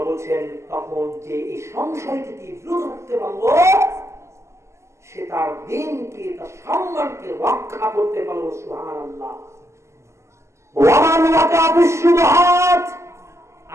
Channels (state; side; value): late; left; 0.13 ms